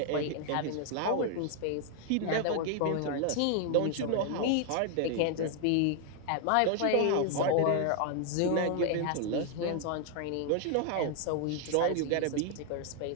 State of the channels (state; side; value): different; both; correlation 0.00